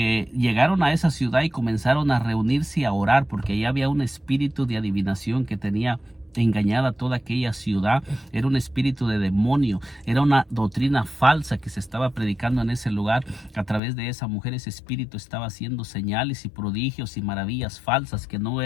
a esa ciudad y comenzaron a reunirse y a orar, porque ahí había un espíritu de adivinación que tenía engañada toda aquella ciudad. Era un espíritu de demonio, era una doctrina falsa que se estaba predicando en ese lugar. A través de esa mujer, ese espíritu estaba haciendo señales y prodigios y maravillas falsas que no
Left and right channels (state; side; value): drops out; right; at 13.8 s